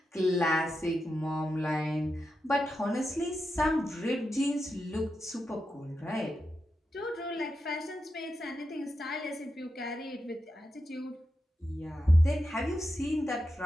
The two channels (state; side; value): normal; both; correlation 0.88